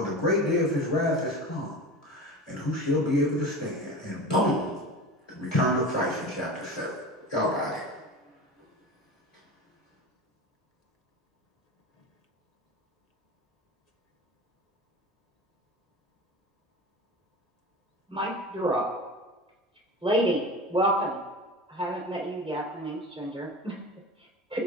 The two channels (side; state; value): both; normal; correlation 0.31